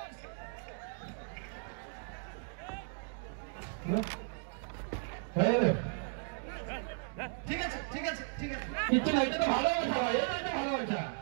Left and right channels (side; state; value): left; silent; 54 dB below the other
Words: ঠিক আছে ঠিক আছে ঠিক আছে, কিচ্ছু না, এটা তো ভালোবাসা, এটা তো ভালোবাসা।